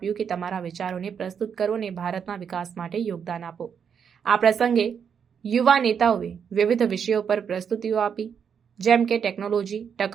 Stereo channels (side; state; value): left; quieter; 7.3 dB